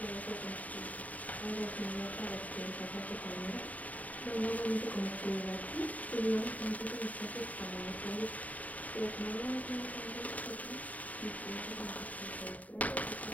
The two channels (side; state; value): right; late; 0.072 ms